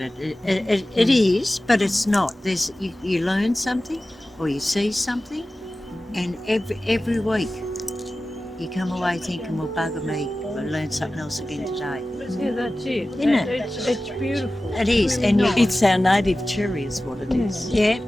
it. It is, but it's not. You learn something or you see something, and every week you come away thinking, well, bugger me, I learned something else again today. Yeah, that's it. Isn't it? It's beautiful. It is, and It's our native cherry is what it is. yeah.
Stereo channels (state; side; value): normal; both; correlation 0.96